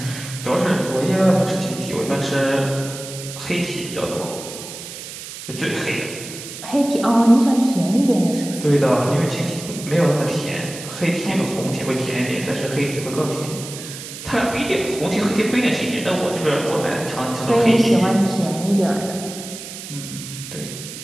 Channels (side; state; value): right; noise; hiss, 11 dB below the sound